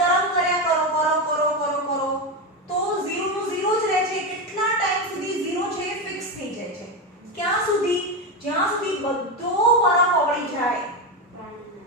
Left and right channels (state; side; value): normal; both; correlation 0.13